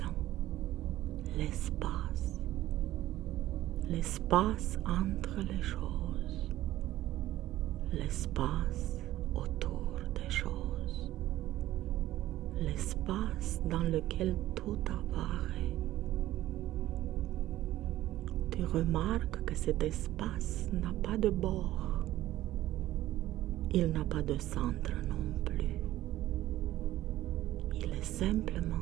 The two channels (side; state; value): left; quieter; 14.8 dB